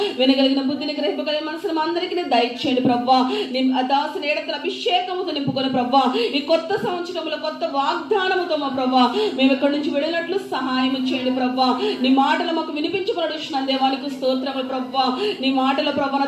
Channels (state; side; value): identical; both; correlation 1.00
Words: వినగలిగిన బుద్ధిని గ్రహింపగలిగిన మనసును మా అందరికీ దయచేయండి ప్రభా. నీ దాసుని ఏడంతల అభిషేకముతో నింపుకొని ప్రభా ఈ కొత్త సంవత్సరంలో కొత్త వాగ్దానముతో మా ప్రభా మేము ఇక్కడి నుంచి వెళ్ళినట్లు సహాయం చేయండి ప్రభా. నీ మాటలు మాకు వినిపించబడుచున్నాను దేవానికి స్తోత్రములు ప్రభా. నీ మాటల ప్రభా నా